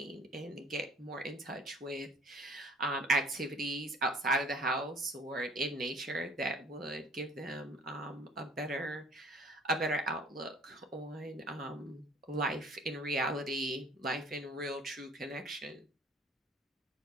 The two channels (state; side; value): normal; both; correlation 0.52